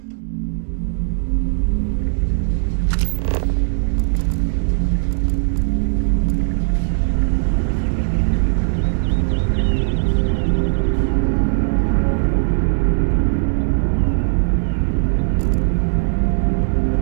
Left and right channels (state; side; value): silent; left; digital silence